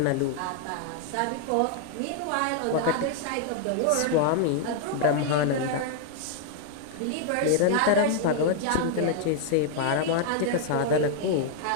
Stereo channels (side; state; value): both; different; correlation 0.00